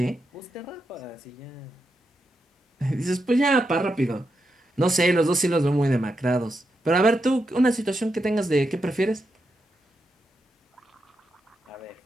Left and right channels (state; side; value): normal; both; correlation 0.85